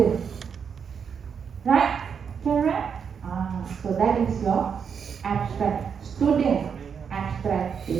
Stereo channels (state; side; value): quieter; left; 6.8 dB